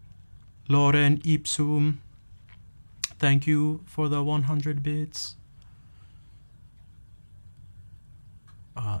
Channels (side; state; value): both; inverted; correlation -1.00